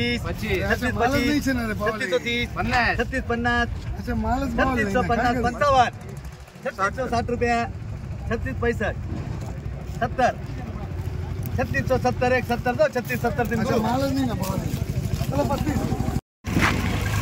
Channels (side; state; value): both; identical; correlation 1.00